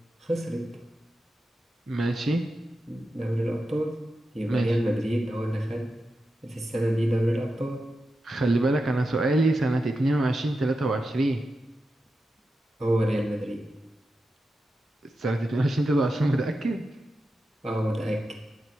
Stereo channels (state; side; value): normal; both; correlation 0.90